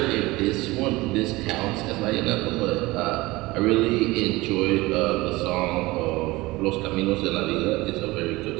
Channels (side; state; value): left; quieter; 20.8 dB